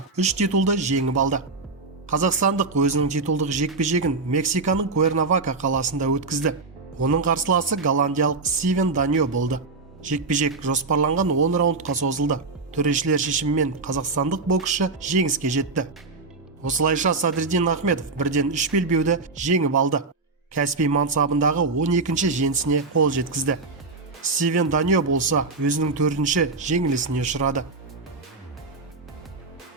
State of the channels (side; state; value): left; quieter; 3.9 dB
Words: 3 титулды жеңіп алды. Қазақстандық өзінің титулдық жекпе-жегін Мексиканың Куэрнавака қаласында өткізді. Оның қарсыласы голландиялық Стивен Даньо болды. Жекпе-жек жоспарланған 10 раундқа созылды. Төрешілер шешімімен қазақстандық боксшы жеңіске жетті. Осылайша Садриддин Ахмедов бірден 3 белбеуді жеңіп алды. Кәсіби мансабындағы 12-ші жеңісіне қол жеткізді. Стивен Даньо болса өзінің 4-ші жеңілісіне ұшырады.